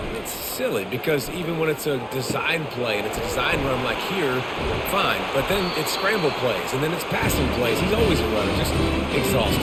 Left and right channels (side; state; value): both; identical; correlation 1.00